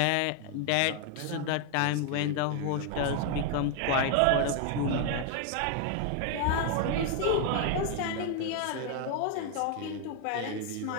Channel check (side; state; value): both; different; correlation 0.01